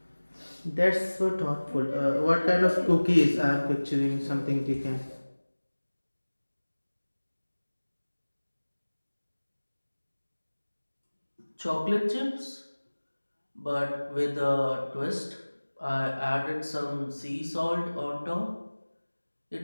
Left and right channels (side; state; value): both; inverted; correlation -1.00